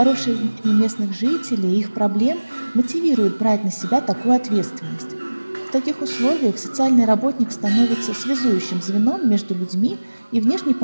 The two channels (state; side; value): inverted; both; correlation -1.00